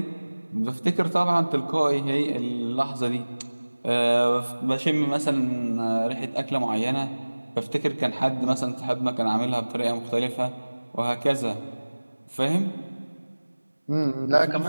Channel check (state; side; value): inverted; both; correlation -1.00